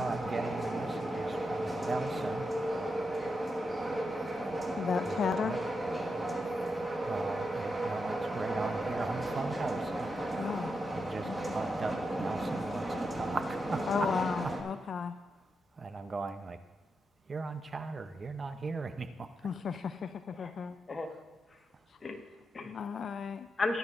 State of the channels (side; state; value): both; normal; correlation 0.86